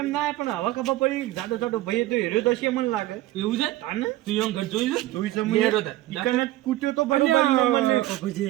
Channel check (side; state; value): left; quieter; 16.1 dB